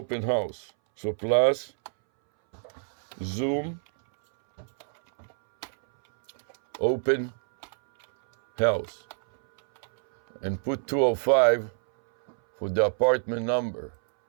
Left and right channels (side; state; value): left; silent; 60 dB below the other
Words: house. So plus Zoom open house, and put 205 for the apartment number.